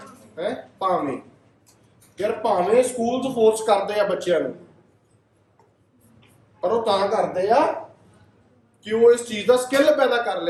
ਹੈ ਭਾਵੇਂ। ਯਾਰ ਭਾਵੇਂ ਸਕੂਲਸ ਫੋਰਸ ਕਰਦੇ ਆ ਬੱਚਿਆਂ ਨੂੰ, ਪਰ ਉਹ ਤਾਂ ਕਰਦੇ ਆ ਕਿ ਉਹ ਇਸ ਚੀਜ਼ ਦਾ ਸਕਿੱਲ ਪੈਦਾ ਕਰ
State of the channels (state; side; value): identical; both; correlation 1.00